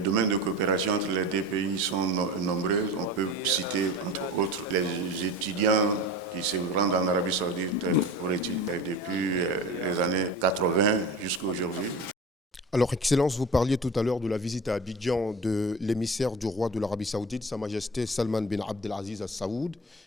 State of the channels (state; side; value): normal; both; correlation 0.34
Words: de coopération entre les deux pays sont nombreux. On peut citer, entre autres, les étudiants qui se rendent en Arabie Saoudite pour étudier depuis les années 80 jusqu'à aujourd'hui. Alors, Excellence, vous parliez tout à l'heure de la visite à Abidjan de l'émissaire du roi de l'Arabie Saoudite, Sa Majesté Salman bin Abdelaziz Al Saoud.